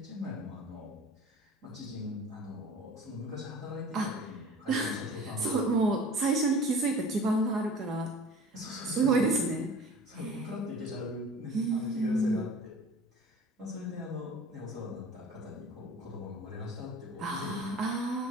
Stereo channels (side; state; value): both; normal; correlation 0.43